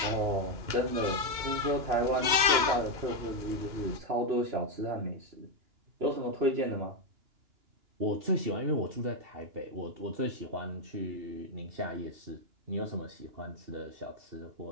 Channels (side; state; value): left; late; 2.9 ms